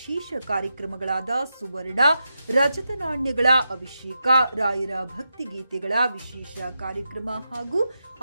ಕಾರ್ಯಕ್ರಮಗಳಾದ ಸುವರ್ಣ, ರಜತ ನಾಣ್ಯಗಳ ಅಭಿಷೇಕ, ರಾಯರ ಭಕ್ತಿಗೀತೆಗಳ ವಿಶೇಷ ಕಾರ್ಯಕ್ರಮ ಹಾಗೂ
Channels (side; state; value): both; inverted; correlation -0.87